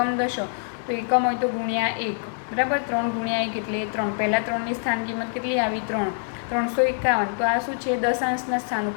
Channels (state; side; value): silent; right; digital silence